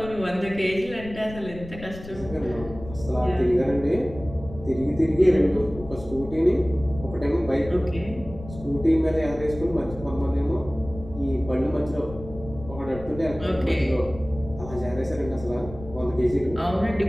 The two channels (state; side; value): noise; left; rumble, 14 dB below the sound